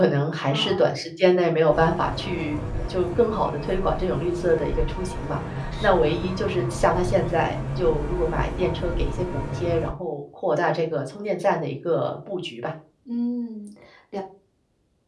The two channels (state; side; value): identical; both; correlation 1.00